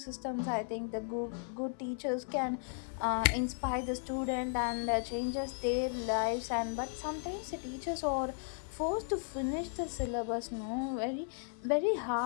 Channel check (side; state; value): right; silent; 54 dB below the other